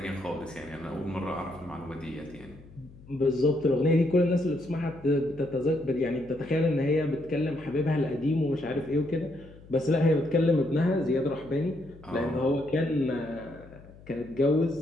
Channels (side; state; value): left; noise; hum, 21 dB below the sound